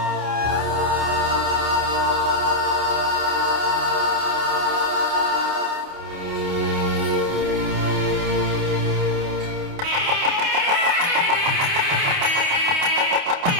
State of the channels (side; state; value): left; late; 28 ms